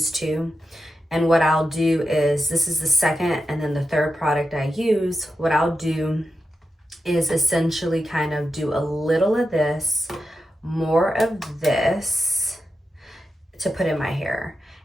2. And what I'll do is, this is the second and then the third product I use. What I'll do is essentially kind of do a little of this, more of this to put in my hair.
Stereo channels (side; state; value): both; normal; correlation 0.89